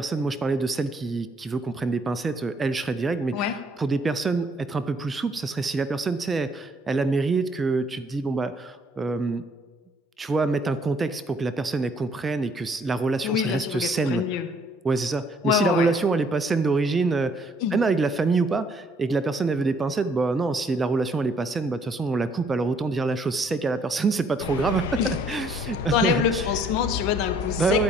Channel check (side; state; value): both; normal; correlation 0.64